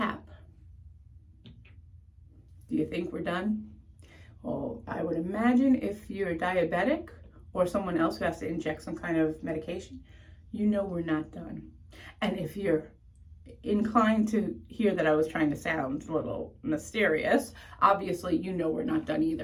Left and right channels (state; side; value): identical; both; correlation 1.00